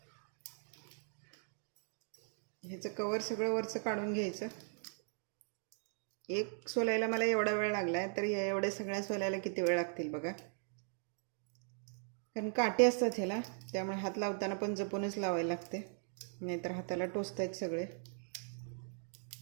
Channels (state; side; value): silent; left; 52 dB below the other